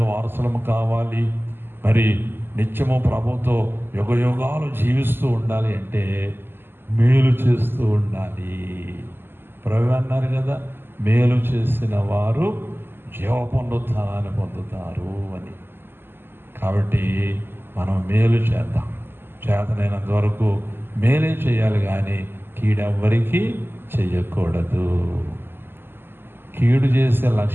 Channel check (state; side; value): late; left; 0.10 ms